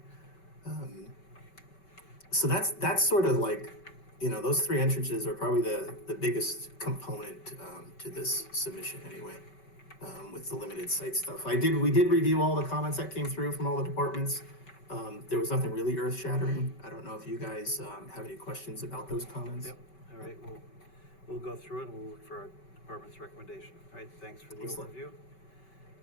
So that's sort of like, those three entrances are probably the biggest component to this submission anyway, with the limited site stuff. We did review all the comments that came through from all the departments. There was nothing really earth shattering. I don't know if you guys have any questions about those comments. Yep, all right, we'll go through it and we'll look for our department's recommendation. All right, thanks for the Excellent. overview.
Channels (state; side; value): late; right; 5.2 ms